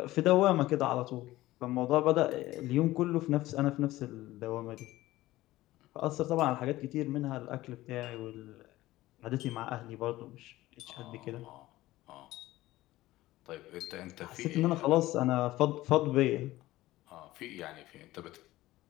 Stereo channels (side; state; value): right; quieter; 17.0 dB